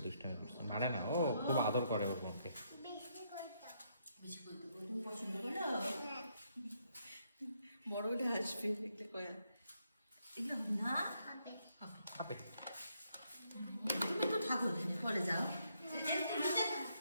মারে না ও খুব আদর করে ওর মনকে পছন্দ করো বড় হলে আসবে দেখতে কয়া এগুলো না খাবে তুমি তো ঠাকুর এখানে পরে যাও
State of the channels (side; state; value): both; inverted; correlation -0.75